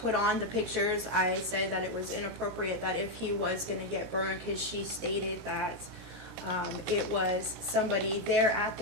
on the pictures. I said that it was inappropriate that if he was going to get burned, because she stated that it was somebody there at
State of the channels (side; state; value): left; late; 17 ms